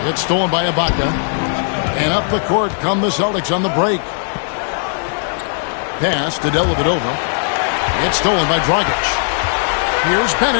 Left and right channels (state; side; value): silent; right; digital silence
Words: It's stolen by Ibaka. And up the court come the Celtics on the break. Pass to Dellavedova. It's stolen by Dragic. Here's